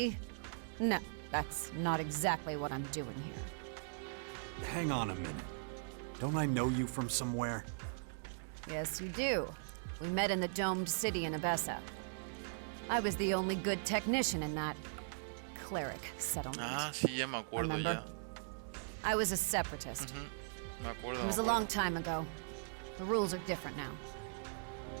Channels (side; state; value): left; silent; digital silence